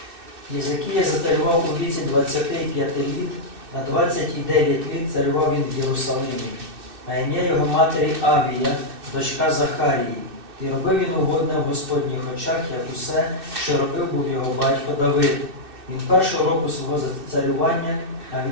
Єзекія зацарював у віці 25 літ, на 29 літ царював він в Єрусалимі, а ім'я його матері Авія, дочка Захарії. І робив він угодне в Господніх очах, як усе, що робив був його батько Давид. Він першого року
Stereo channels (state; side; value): late; left; 2.6 ms